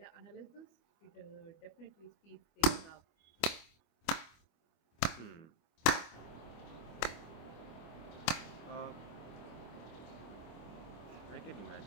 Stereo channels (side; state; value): right; late; 25 ms